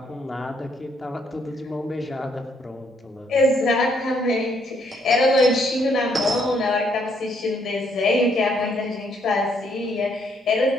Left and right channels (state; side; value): normal; both; correlation 0.71